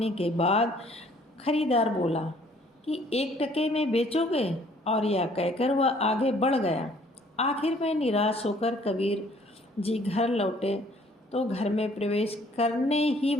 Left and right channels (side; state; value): both; normal; correlation 0.59